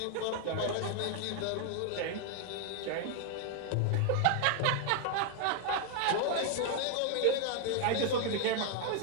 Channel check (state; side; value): different; both; correlation 0.00